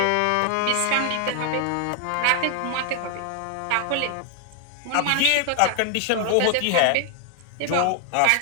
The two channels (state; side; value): different; both; correlation 0.00